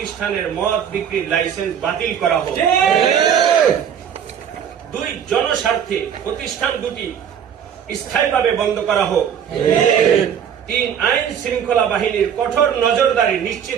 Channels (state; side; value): quieter; left; 8.3 dB